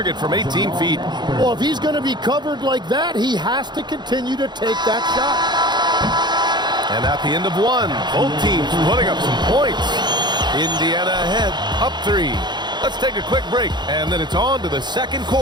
from 18 feet. Well, if he's going to be covered like that, he has to continue to take that shot. And at the end of one, both teams putting up some points. Indiana ahead, up 3. Let's take a quick break, and then it's on to the second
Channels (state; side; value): late; left; 0.21 ms